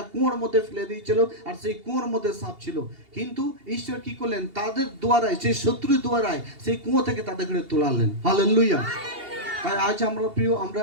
কুয়োর মধ্যে ফেলে দিয়েছিল আর সেই কুয়োর মধ্যে সাপ ছিল, কিন্তু ঈশ্বর কি করলেন, তাদের দ্বারায়, সেই শত্রুর দ্বারায় সেই কুয়ো থেকে তাদেরকে তোলালেন। হালেলুয়া। তাই আজ আমরা প্রিয়,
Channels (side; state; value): left; late; 2.8 ms